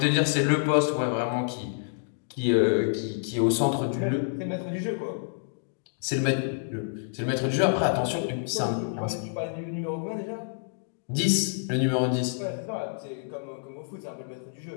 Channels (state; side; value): silent; right; digital silence